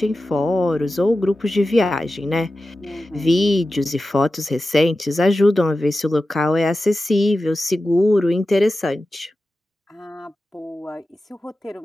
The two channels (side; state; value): both; normal; correlation 0.93